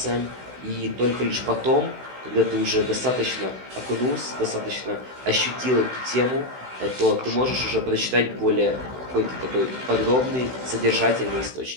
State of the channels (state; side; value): late; left; 16 ms